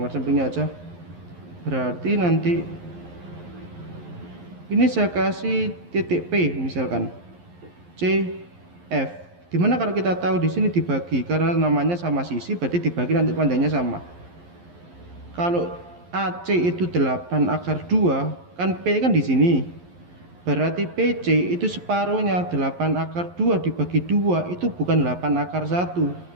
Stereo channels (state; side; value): late; left; 11 ms